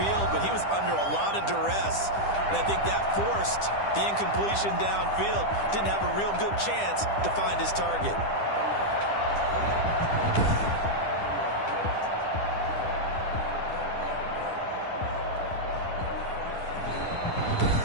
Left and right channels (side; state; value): right; late; 10 ms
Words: but he was under a lot of duress. And I think that forced the incompletion downfield. Didn't have a real good chance to find his target.